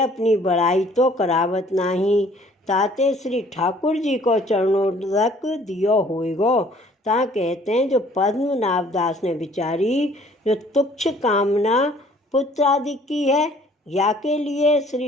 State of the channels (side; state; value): both; normal; correlation 0.56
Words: बड़ाई तो करावत नहीं, ताते श्री ठाकुर जी को चरणोदक दियो होइगो। ता कहते हैं, जो पद्मनाभ दास ने बिचारी जो तुच्छ कामना पुत्र आदि की है, या के लिए